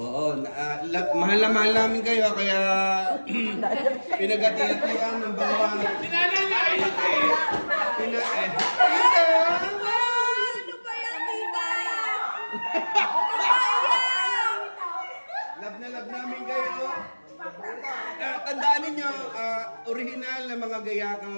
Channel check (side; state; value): both; inverted; correlation -1.00